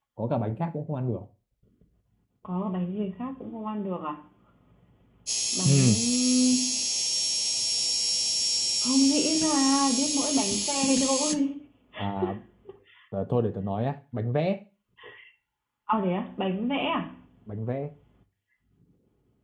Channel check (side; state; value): both; identical; correlation 1.00